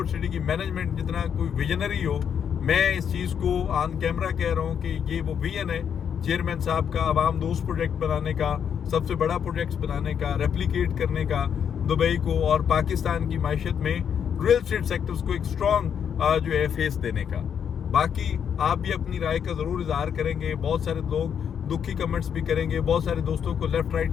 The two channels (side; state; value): right; quieter; 8.0 dB